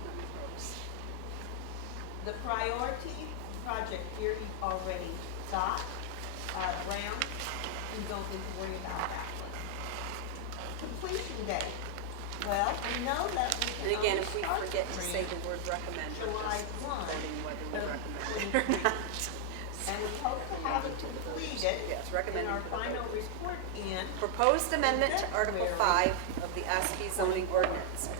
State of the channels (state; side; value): different; both; correlation 0.00